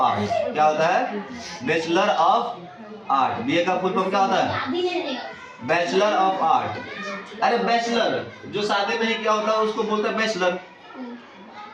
क्या होता है? Bachelor of art. BA का फुल फॉर्म क्या होता है? Bachelor of art. अरे बैचलर जो शादी में ही क्या होता है उसको बोलते हैं बैचलर।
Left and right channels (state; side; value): identical; both; correlation 1.00